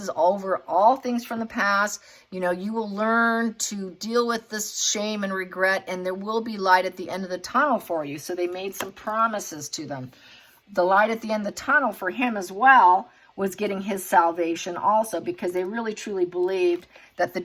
over all things from the past. You know, you will learn to deal with this shame and regret, and there will be light at the end of the tunnel for you. So they made some promises to them. The light at the end of the tunnel for him as well was getting his salvation also, because they really truly believed that the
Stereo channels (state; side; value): identical; both; correlation 1.00